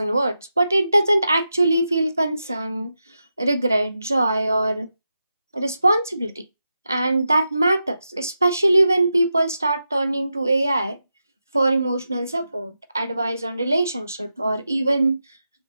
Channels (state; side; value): inverted; both; correlation -0.89